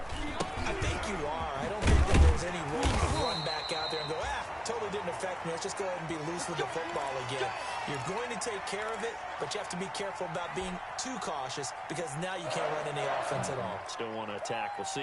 I think you are. I don't think that there's any way you can run back out there and go, totally didn't affect me. Let's just go ahead and be loose with the football again. You're going to take care of it, but you have to be careful about being too cautious because now you can't run any offense at all. Still want to attack. We'll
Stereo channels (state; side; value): identical; both; correlation 1.00